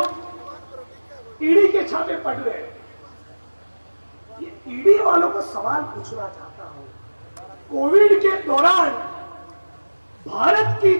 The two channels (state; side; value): inverted; both; correlation -1.00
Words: ईडी के छापे पड़ रहे हैं। ये ईडी वालों को सवाल पूछना चाहता हूं, कोविड के दौरान भारत की